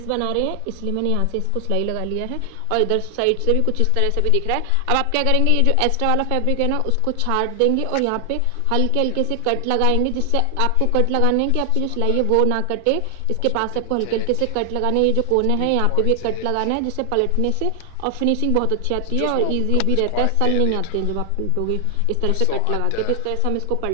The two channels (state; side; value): different; both; correlation 0.00